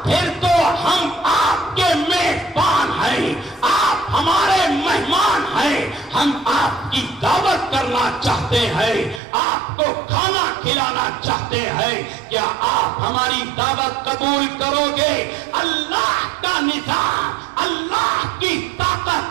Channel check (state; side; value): drops out; left; at 9.2 s